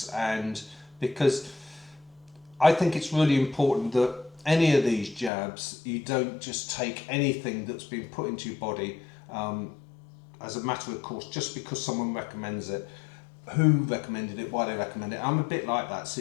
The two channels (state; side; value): drops out; right; at 5.3 s